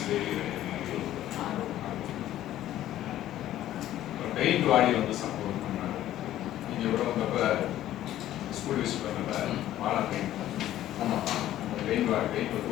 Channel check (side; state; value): right; quieter; 13.2 dB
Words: பெயிண்ட் வாடி வந்து சப்போர்ட் பண்ணாங்க. நீங்கள் எவ்வளோ வந்தப்போ ஸ்கூல் விசிட் பண்ணப்ப வாழை பெயிண்ட் ஆமாம் அந்த பெயிண்ட் வந்து